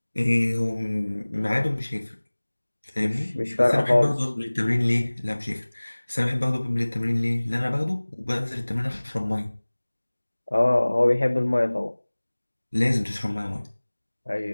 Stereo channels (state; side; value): inverted; both; correlation -1.00